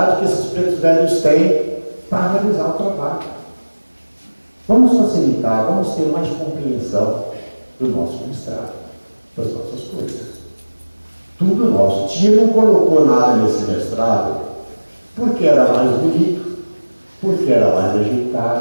que esses pretos velhos têm para realizar o trabalho. Vamos facilitar, vamos ter mais compreensão do nosso mestrado, das nossas coisas. Tudo nosso. Tia não colocou nada nesse mestrado porque era mais bonito, porque era mais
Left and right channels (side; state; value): both; inverted; correlation -1.00